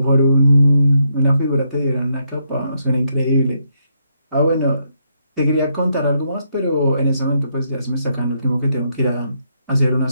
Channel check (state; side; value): inverted; both; correlation -0.77